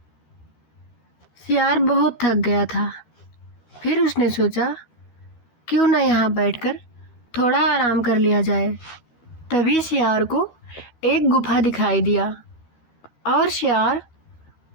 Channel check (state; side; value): late; right; 12 ms